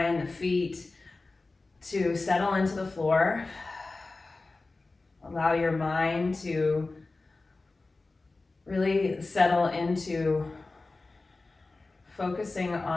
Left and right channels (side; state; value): right; quieter; 3.4 dB